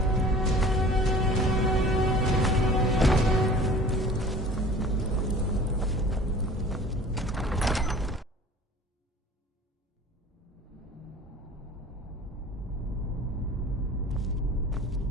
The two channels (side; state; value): both; normal; correlation 0.45